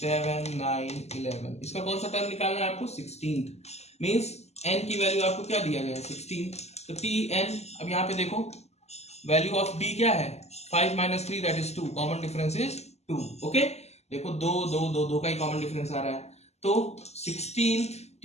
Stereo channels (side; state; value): right; late; 0.31 ms